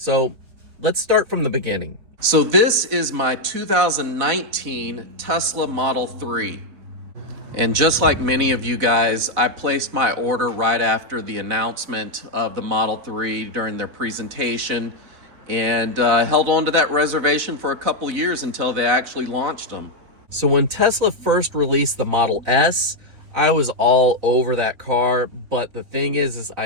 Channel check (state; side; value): late; left; 4.1 ms